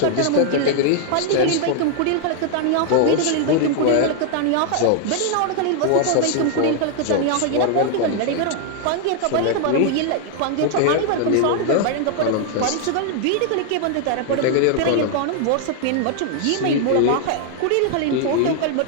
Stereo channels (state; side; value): different; both; correlation 0.00